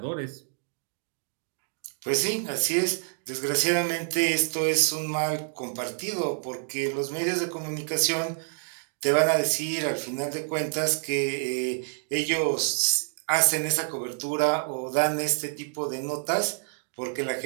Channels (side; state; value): left; silent; digital silence